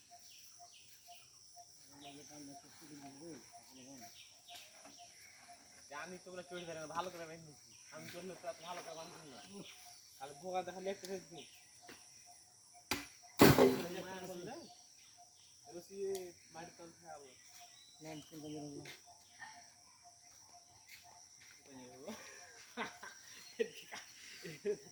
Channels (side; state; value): both; identical; correlation 1.00